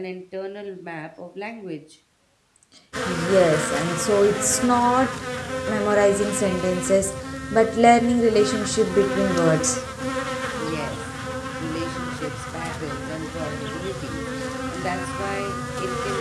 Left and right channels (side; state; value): both; identical; correlation 1.00